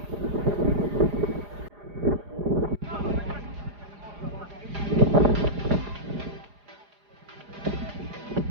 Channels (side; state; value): left; late; 4.9 ms